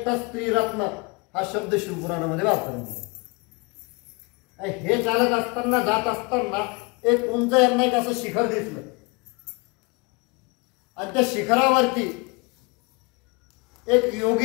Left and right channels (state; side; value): quieter; right; 28.7 dB